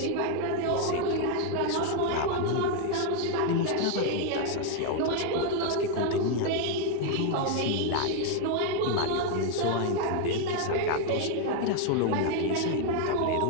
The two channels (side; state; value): both; different; correlation 0.01